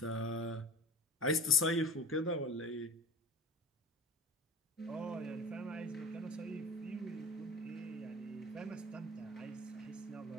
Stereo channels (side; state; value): both; normal; correlation 0.35